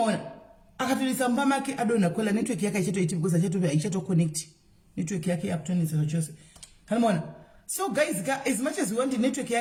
akatorisa mumba make adonha kwela network yake haichatoiti because haichato-connect network yake yakutonesa chose kanimaona. So guys as much as we want network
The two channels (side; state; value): both; identical; correlation 1.00